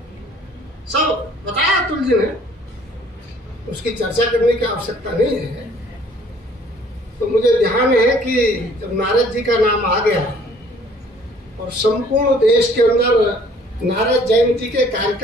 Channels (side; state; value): both; normal; correlation 0.57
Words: सब बताया अतुल जी ने, उसकी चर्चा करने की आवश्यकता नहीं है। तो मुझे ध्यान है कि जब नारद जी का नाम आ गया और संपूर्ण देश के अंदर नारद जयंती के